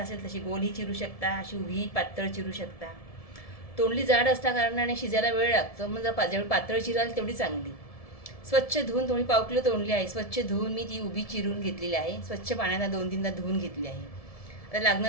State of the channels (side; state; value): right; late; 1.7 ms